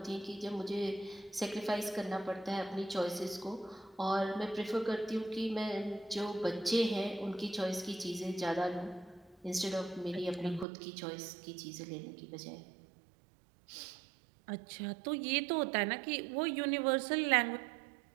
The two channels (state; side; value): drops out; left; at 10.7 s